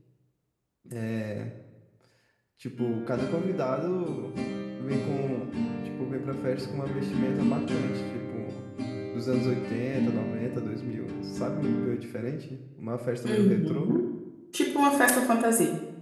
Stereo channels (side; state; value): both; identical; correlation 1.00